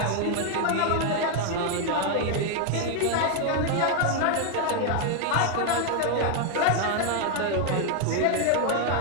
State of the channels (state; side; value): different; both; correlation 0.01